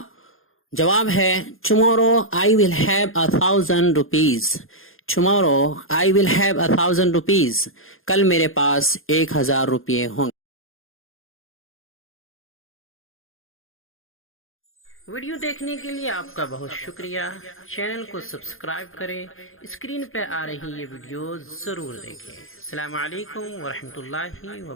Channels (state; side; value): late; right; 0.60 ms